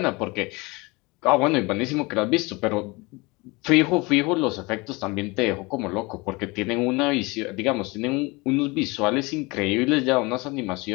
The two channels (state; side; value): quieter; right; 25.1 dB